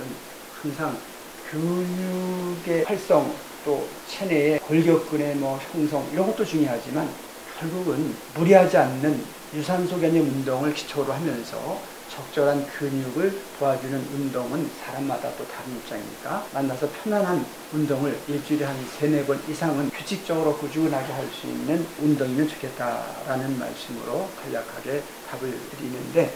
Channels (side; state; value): both; identical; correlation 1.00